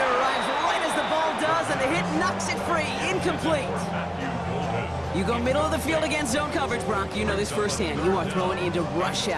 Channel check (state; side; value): identical; both; correlation 1.00